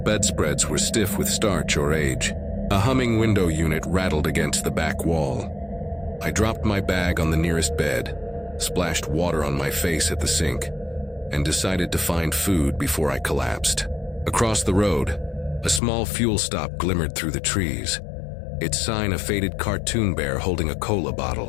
were stiff with starch or age. A humming window unit rattled against the back wall. I dropped my bag on the nearest bed, splashed water on my face at the sink, and decided to find food before I collapsed. Across the road, a small fuel stop glimmered through the trees, its sign a faded cartoon bear holding a cola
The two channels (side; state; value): right; drops out; at 15.8 s